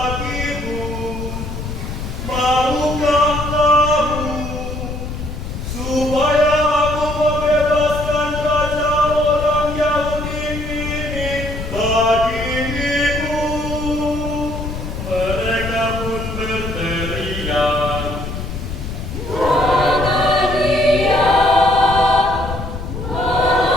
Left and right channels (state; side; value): noise; left; rumble, 6 dB below the sound